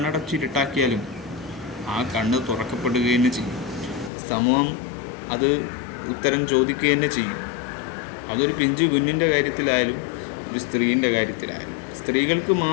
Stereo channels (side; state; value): right; drops out; at 4.1 s